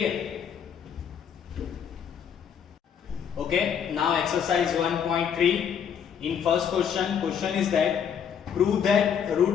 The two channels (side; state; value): right; quieter; 7.9 dB